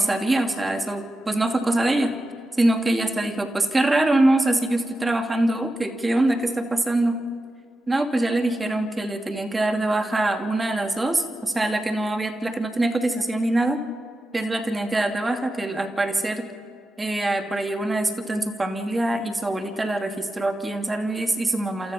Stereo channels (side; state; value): both; normal; correlation 0.91